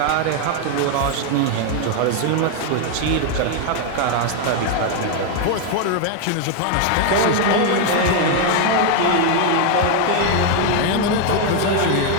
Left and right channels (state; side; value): different; both; correlation 0.01